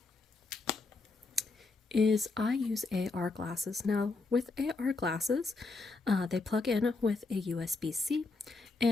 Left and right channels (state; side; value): quieter; right; 3.7 dB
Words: is I use AR glasses. Now, with AR glasses, they plug in with a USB-C,